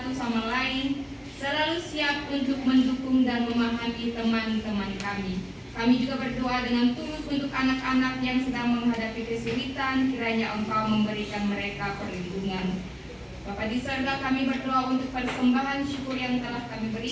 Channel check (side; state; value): both; identical; correlation 1.00